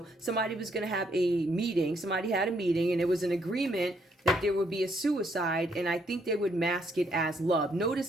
somebody was going to have a meeting. Somebody had a meeting and it was an agreement that there would be a suicide. And I think they would mask it as love.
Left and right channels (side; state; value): both; normal; correlation 0.72